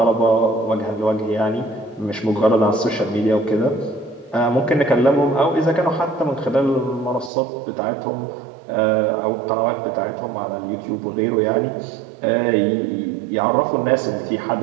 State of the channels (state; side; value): drops out; left; at 7.3 s